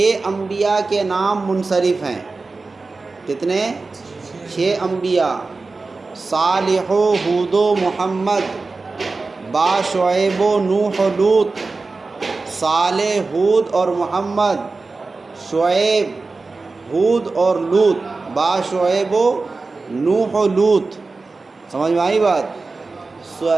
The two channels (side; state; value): left; quieter; 3.8 dB